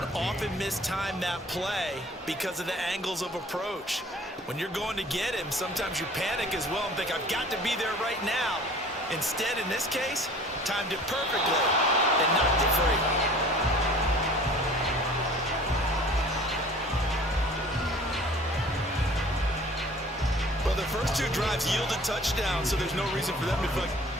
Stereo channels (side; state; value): both; normal; correlation 0.48